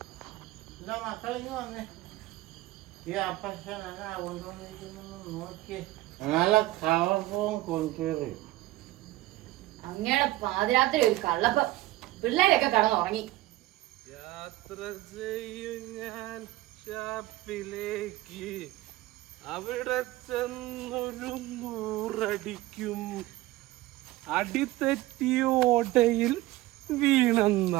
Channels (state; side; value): quieter; left; 17.5 dB